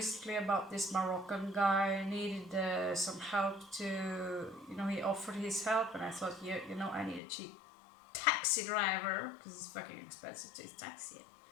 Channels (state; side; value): drops out; right; at 7.2 s